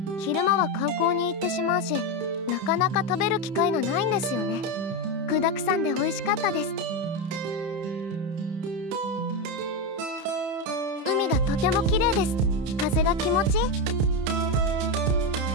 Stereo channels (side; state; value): left; late; 30 ms